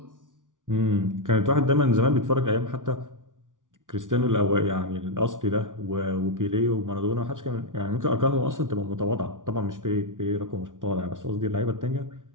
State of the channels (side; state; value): left; late; 0.88 ms